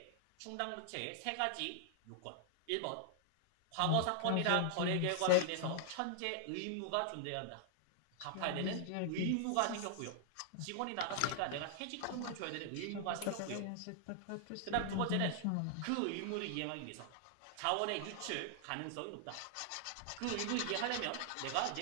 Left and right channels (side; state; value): both; different; correlation -0.01